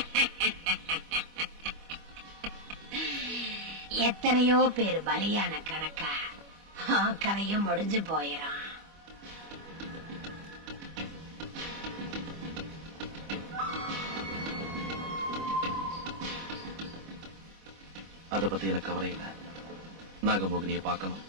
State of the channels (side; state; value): left; late; 25 ms